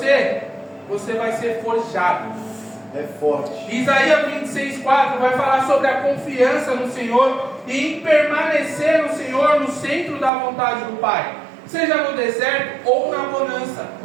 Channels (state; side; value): drops out; left; at 10.3 s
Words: você vai ser forjado. É forte. Isaías 26:4 vai falar sobre a confiança no Senhor e em permanecer no Senhor, no centro da vontade do Pai, seja no deserto ou na bonança.